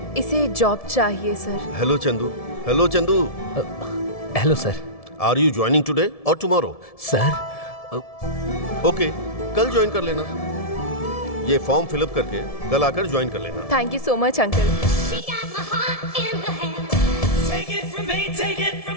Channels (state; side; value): late; right; 1.7 ms